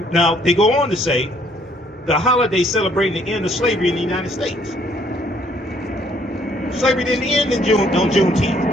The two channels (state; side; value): normal; both; correlation 0.65